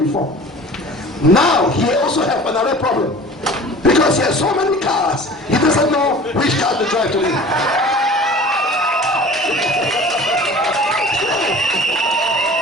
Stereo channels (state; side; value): normal; both; correlation 0.42